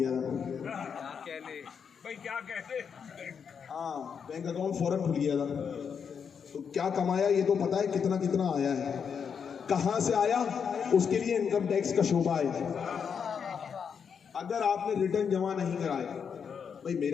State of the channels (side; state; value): right; quieter; 6.8 dB